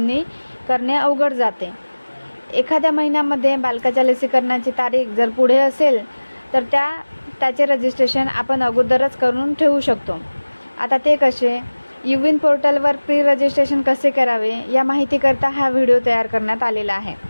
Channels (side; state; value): both; inverted; correlation -1.00